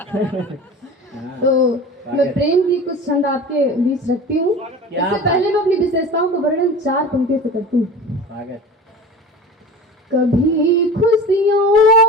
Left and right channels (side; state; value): both; normal; correlation 0.35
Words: तो मैं प्रेम की कुछ छंद आपके बीच रखती हूँ। इससे पहले मैं अपनी विशेषताओं का वर्णन 4 पंक्तियों से करती हूँ। कभी